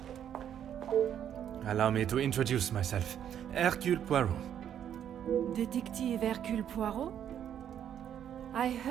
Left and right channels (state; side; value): quieter; left; 9.6 dB